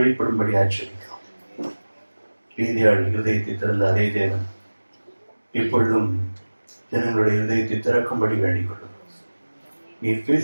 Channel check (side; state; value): both; inverted; correlation -1.00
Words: ஆச்சரிக்கிறோம். ரீதியாள் இருதயத்தை திறந்த அதே தேவன் இப்பொழுதும் ஜனங்களுடைய இருதயத்தை திறக்கும்படி வேண்டிக் கொள்ளும். நீ